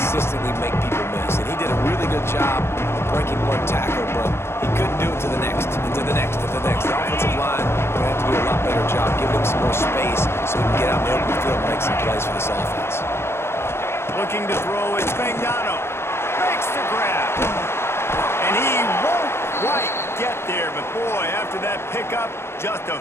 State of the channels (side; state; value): right; late; 0.12 ms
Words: make people miss, and he did a really good job of breaking one tackle, but he couldn't do it to the next, and to the next, and to the next. The offensive line will have to do a lot better job, giving him some more space so he can get out in the open field and make some plays for this offense. Looking to throw, it's Spagnano. Makes the grab. And he won't quite get there, but boy, after that pickup, just a